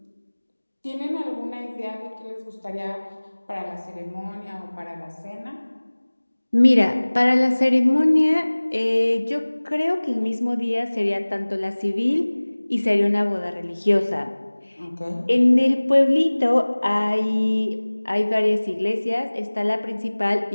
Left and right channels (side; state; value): both; inverted; correlation -1.00